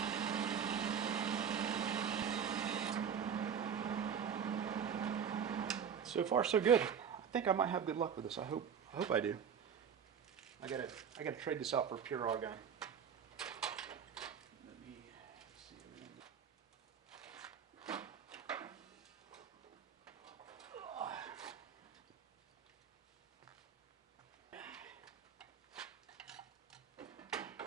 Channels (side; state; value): left; quieter; 7.6 dB